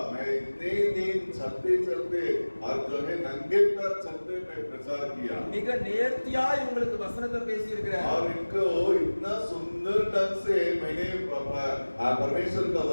मैं इतने दिन चलते चलते और जो है नंगे पैर चलते मैं प्रचार किया மிக நேர்த்தியா இவங்களுக்கு வசனத்தை பேசி இருக்கிறேன், और इनको इतना सुंदर ढंग से मैंने परमेश्वर का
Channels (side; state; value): both; inverted; correlation -1.00